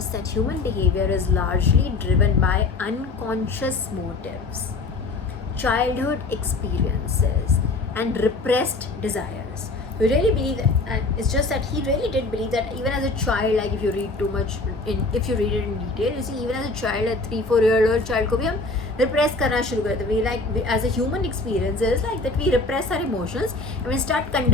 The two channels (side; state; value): right; quieter; 3.5 dB